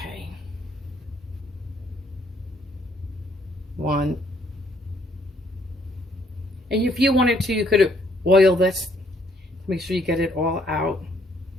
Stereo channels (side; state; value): both; normal; correlation 0.66